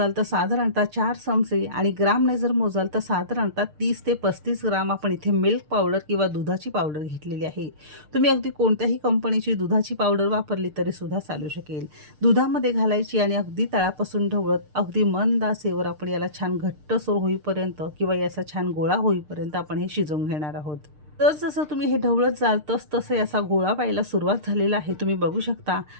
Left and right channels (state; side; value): late; left; 6.6 ms